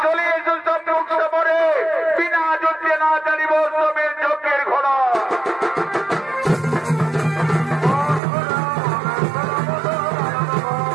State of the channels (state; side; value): drops out; left; at 8.2 s